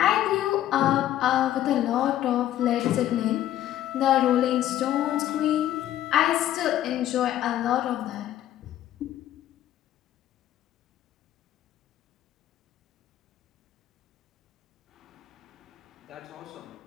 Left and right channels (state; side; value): quieter; right; 12.5 dB